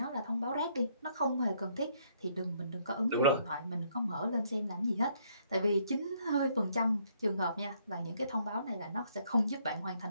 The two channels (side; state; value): both; inverted; correlation -0.69